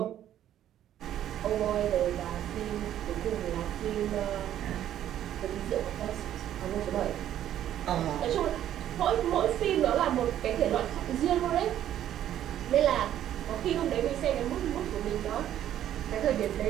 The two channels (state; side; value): quieter; left; 11.4 dB